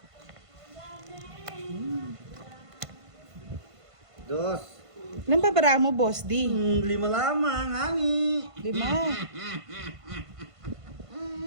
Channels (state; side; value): late; left; 1.5 ms